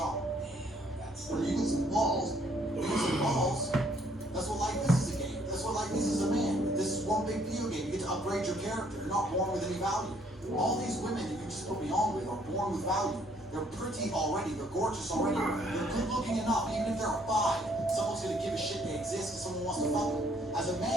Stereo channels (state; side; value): normal; both; correlation 0.65